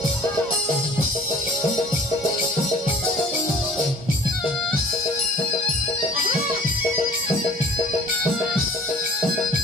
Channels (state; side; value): normal; both; correlation 0.50